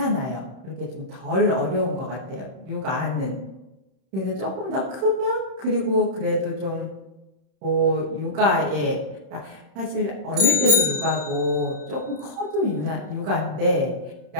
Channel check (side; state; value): left; late; 31 ms